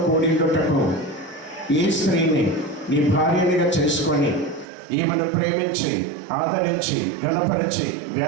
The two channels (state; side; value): drops out; left; at 4.7 s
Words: కూడిండుటకు ఈ స్త్రీని నీ భార్యనిగా చేసుకొని ఈమెను ప్రేమించి ఆదరించి గణపరిచి